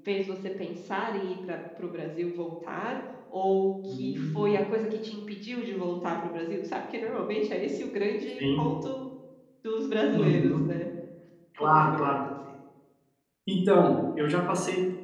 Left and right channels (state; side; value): identical; both; correlation 1.00